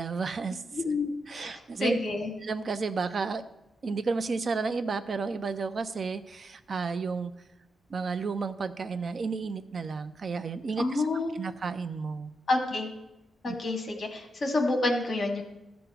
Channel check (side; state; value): both; normal; correlation 0.83